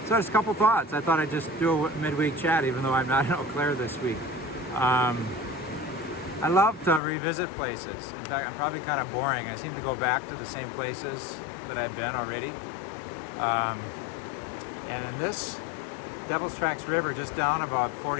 just a couple thoughts. I thought I'd just do a midweek chat, even though I'm not in Eau Claire this week. I love to revisit places. In fact, I'm probably kind of boring. I seem to go back to the same places that I've been already. And in this Devil's Tracks River, just down about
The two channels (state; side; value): drops out; right; at 7.0 s